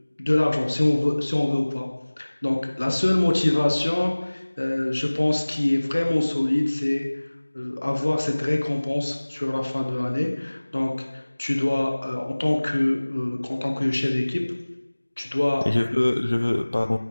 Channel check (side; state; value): both; inverted; correlation -1.00